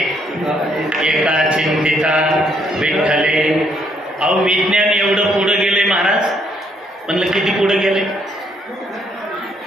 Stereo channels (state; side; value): normal; both; correlation 0.70